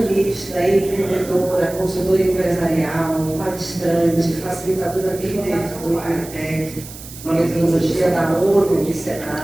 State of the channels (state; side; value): noise; right; hiss, 15 dB below the sound